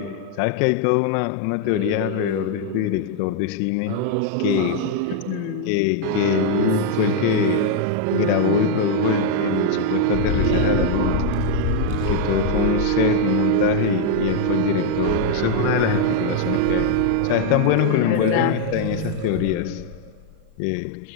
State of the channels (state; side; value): different; both; correlation 0.00